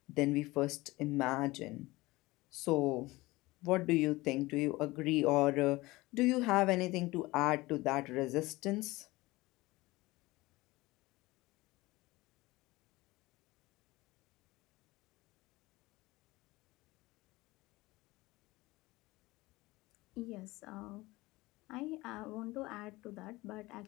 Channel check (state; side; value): quieter; right; 20.5 dB